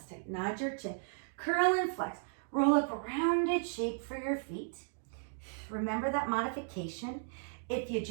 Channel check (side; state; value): left; silent; digital silence